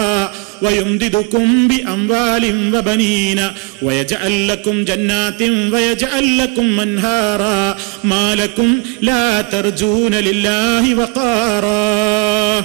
ويمددكم بأموال وبنين ويجعل لكم جنات ويجعل لكم أنهارا ما لكم لا ترجون لله وقارا.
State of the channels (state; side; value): quieter; left; 27.4 dB